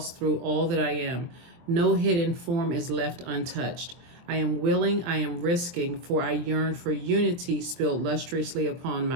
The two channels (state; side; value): late; left; 23 ms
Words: through all that I am. No hidden form is left untouched. I am willing, I am risking, for I yearn for unity spilled lustrously upon